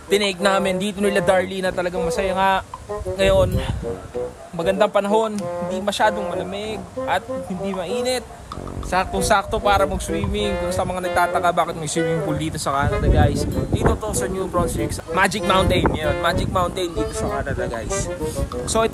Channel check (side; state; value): both; identical; correlation 1.00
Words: tinake namin dito nila Darlene, na talagang masaya nga. Ngayon, magandang panahon, hindi masyadong malamig at hindi mainit. Saktong-sakto para mag-swimming. Kung sa mga nagtataka bakit may swimming pool dito sa Canada guys, dito to sa New Brunswick, Magic Mountain. Yun, Magic Mountain dito sa Canada guys. So